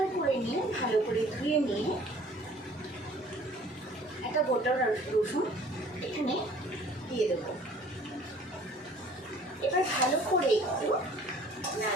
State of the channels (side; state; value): both; normal; correlation 0.51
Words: করে নিয়ে ভালো করে ধুয়ে নিয়ে একটা গোটা রসুন এখানে দিয়ে দেবো। এবার ভালো করে একটু